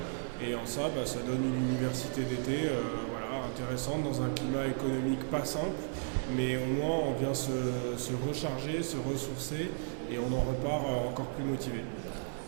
Et en ça, ça donne une université d'été intéressante dans un climat économique pas simple, mais au moins on vient se recharger, se ressourcer et on en repart encore plus motivé.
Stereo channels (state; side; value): silent; left; 55 dB below the other